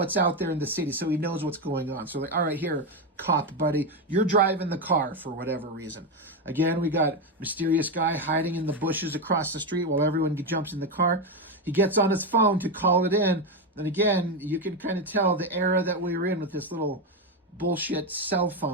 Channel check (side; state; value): both; normal; correlation 0.10